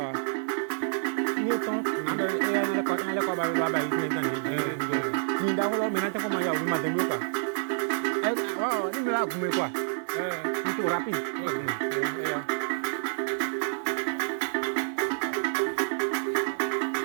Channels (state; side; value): silent; left; digital silence